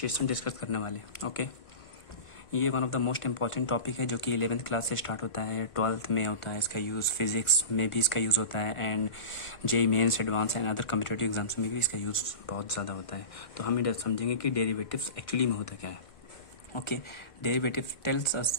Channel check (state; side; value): late; right; 1.5 ms